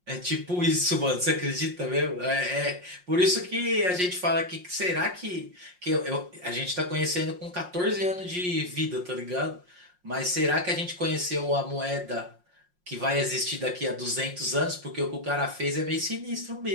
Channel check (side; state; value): left; late; 5.6 ms